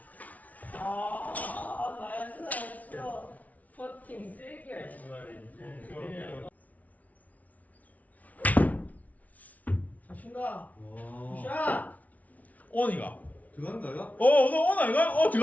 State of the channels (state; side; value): late; right; 0.071 ms